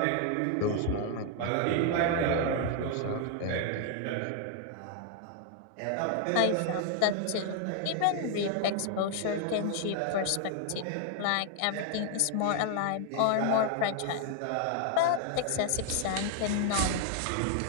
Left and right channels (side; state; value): both; different; correlation 0.00